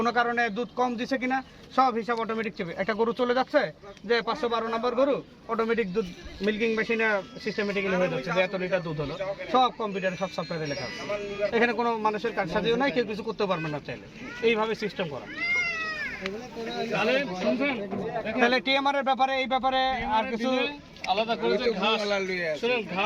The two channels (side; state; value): both; identical; correlation 1.00